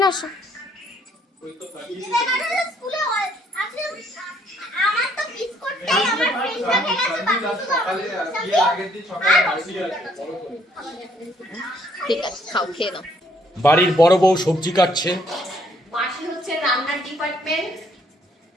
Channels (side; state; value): both; normal; correlation 0.67